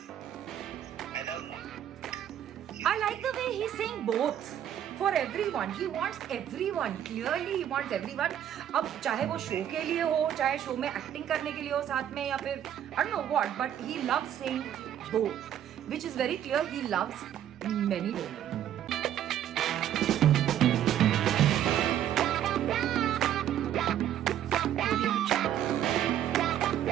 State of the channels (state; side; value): quieter; left; 10.7 dB